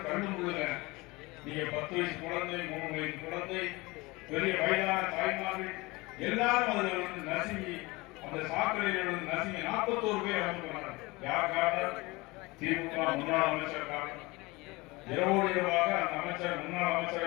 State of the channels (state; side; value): quieter; right; 23.2 dB